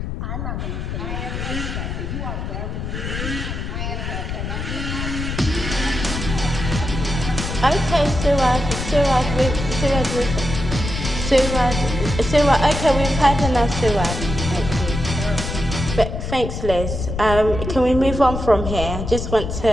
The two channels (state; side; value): noise; left; rumble, 5 dB below the sound